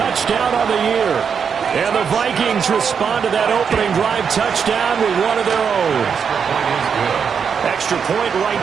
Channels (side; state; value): left; quieter; 6.7 dB